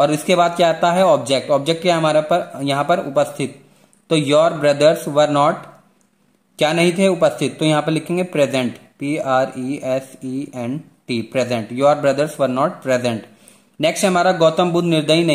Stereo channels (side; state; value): both; identical; correlation 1.00